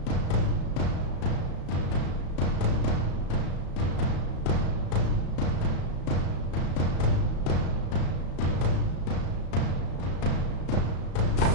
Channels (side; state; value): right; late; 35 ms